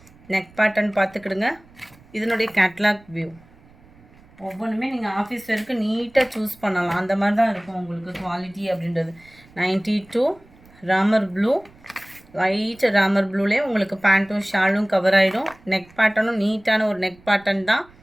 neck pattern பார்த்துக்கிடுங்க. இதனுடைய கேட்லாக் வியூ ஒவ்வொன்றுமே நீங்கள் ஆஃபீஸ் வரைக்கும் நீட்டாக சூஸ் பண்ணலாம். அந்த மாதிரி தான் இருக்கும் உங்களுக்கு குவாலிட்டி அப்படின்றது. 92 ராமர் ப்ளூ, லைட் ராமர் ப்ளூலேயே உங்களுக்கு பேண்ட்டும் ஷாலும் கவர் ஆகிடும். நெக் பேட்டர்னும் நீட்டான ஒரு நெக் பேட்டர்ன் தான்.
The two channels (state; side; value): noise; right; rumble, 27 dB below the sound